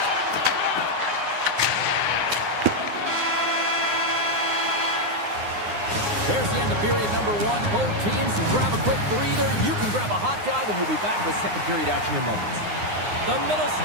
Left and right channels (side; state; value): left; late; 9.7 ms